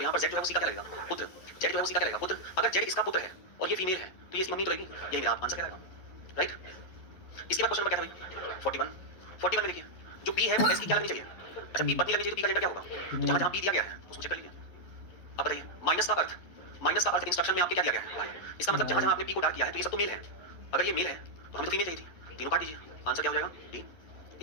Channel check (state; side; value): late; right; 11 ms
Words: यहाँ पर जेड जो है वो सी का क्या लगेगा, पुत्र, जेड जो है वो सी का क्या लगेगा, पुत्र। अगर जेड इसका पुत्र है और ये फीमेल है तो ये इसकी मम्मी तो रहेगी, यही मेरा आंसर क्या रहेगा, राइट। इसके बाद क्वेश्चन नंबर क्या था भाई, 41 में देखिए जो पी है वो एस की क्या लगनी चाहिए। अच्छा पी पत्नी लगनी चाहिए तो पी का जेंडर क्या होगा, तो जहां जहां पी दिया गया है उसको चेक कर लीजिए। अब बताइए माइनस का अर्थ, माइनस का अर्थ इंस्ट्रक्शन में आपके क्या दिया गया है भाई, इसका मतलब जहां जहां आपने पी को डार्क किया है तो ये सब तो मेल है। अगर ये मेल है तो हमें तो फीमेल चाहिए थी, तीनों काट दीजिए, आंसर क्या हो जाएगा डी।